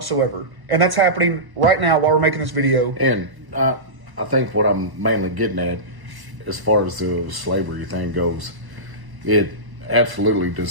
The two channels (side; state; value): left; late; 1.1 ms